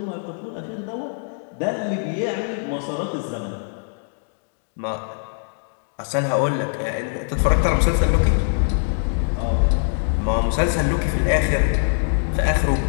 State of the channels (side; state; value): right; silent; 64 dB below the other